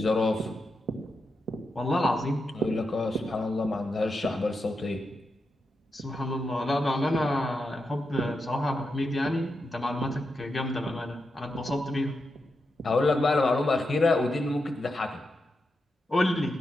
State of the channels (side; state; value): both; normal; correlation 0.87